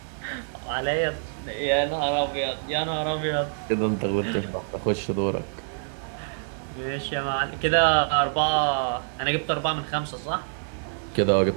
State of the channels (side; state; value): left; silent; digital silence